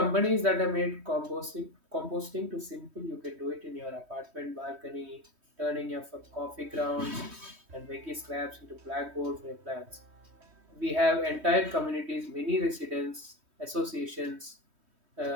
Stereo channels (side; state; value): left; late; 3.2 ms